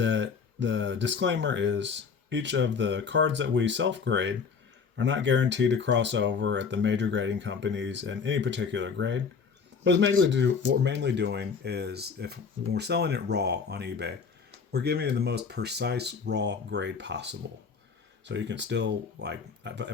the disclaimer is each of the cards that we self-grade are not guaranteed to cross over at the major grading companies in any particular grade. What we're mainly doing is when we're selling it raw on eBay, we're giving it the most precise raw grade possible. So you can still, like,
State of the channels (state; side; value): quieter; right; 5.7 dB